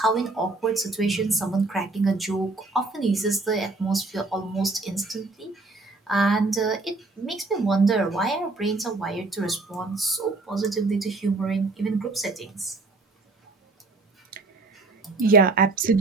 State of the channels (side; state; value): left; quieter; 3.4 dB